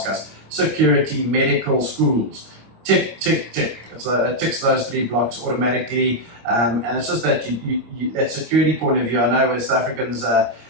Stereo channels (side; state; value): left; late; 25 ms